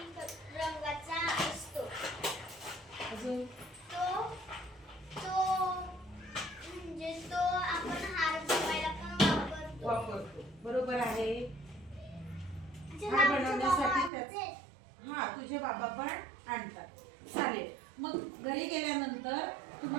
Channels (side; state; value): left; drops out; at 14.1 s